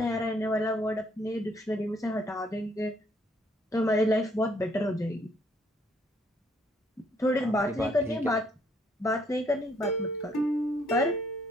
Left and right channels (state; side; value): normal; both; correlation 0.67